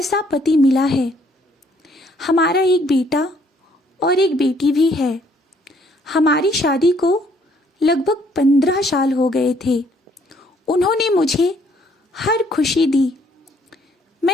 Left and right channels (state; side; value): normal; both; correlation 0.65